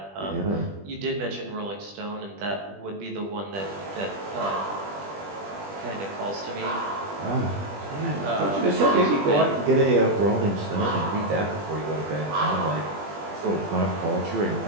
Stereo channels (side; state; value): left; late; 20 ms